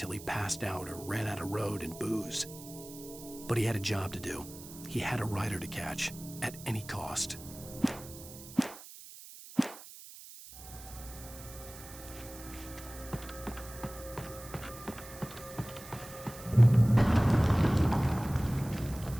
he passed out or ran out of road and booze. But he had a job to do. He had a rider to catch, at any cost.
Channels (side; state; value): right; noise; hiss, 16 dB below the sound